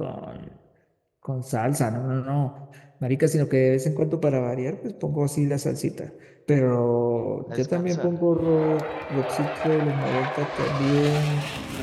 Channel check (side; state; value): both; identical; correlation 1.00